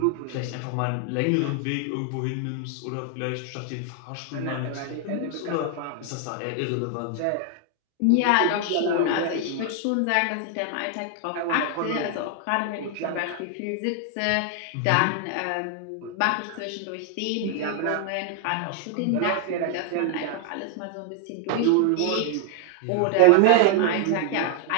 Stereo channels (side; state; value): both; different; correlation 0.00